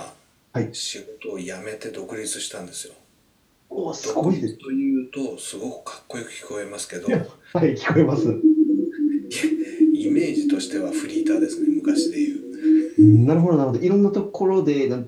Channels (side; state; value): both; identical; correlation 1.00